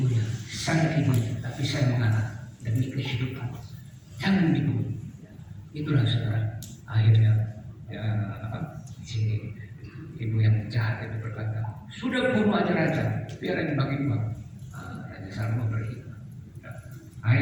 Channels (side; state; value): both; identical; correlation 1.00